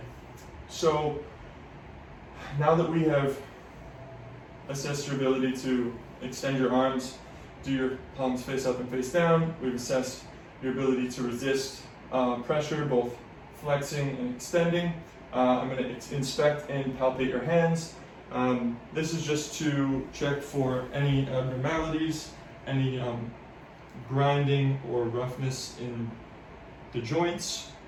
So now that we have assessed your ability to extend your arms, do your palms face up and face down, we've assessed your ability to resist pressure, both flexing and extending. I'm going to inspect and palpate your hands. This is just to check for any abnormalities, any grinding or roughness in the joints.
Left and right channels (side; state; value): both; identical; correlation 1.00